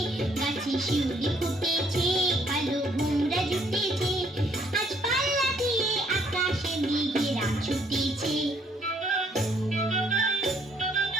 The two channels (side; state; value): both; normal; correlation 0.67